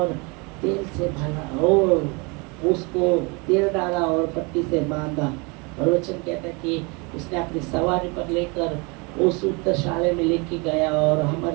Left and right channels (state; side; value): quieter; left; 29.5 dB